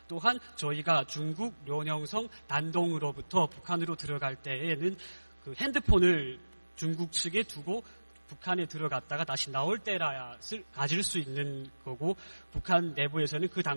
또한 저희가 중국 련영성 단동으로부터 북한으로 들어갈 때에는 그 핸드폰을 중국 측에 두고 북한에 들어갔다가 다시 나올 때라야 가질 수 있는 거고 북한 내부에서는 그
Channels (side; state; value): both; inverted; correlation -1.00